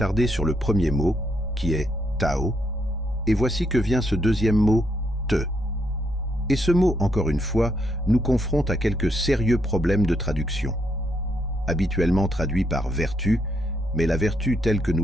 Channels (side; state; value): both; normal; correlation 0.76